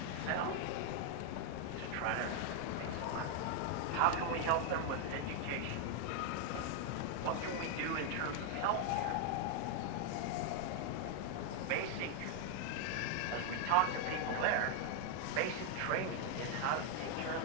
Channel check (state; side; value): different; both; correlation 0.00